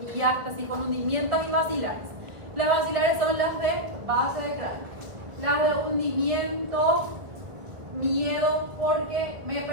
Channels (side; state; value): left; late; 1.7 ms